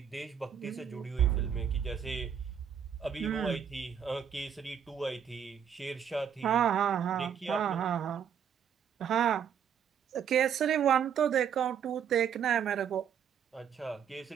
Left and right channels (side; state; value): left; quieter; 8.1 dB